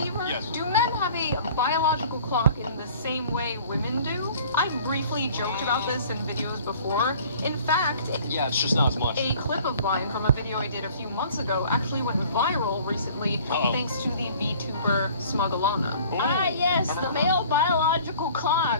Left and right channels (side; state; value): both; inverted; correlation -0.50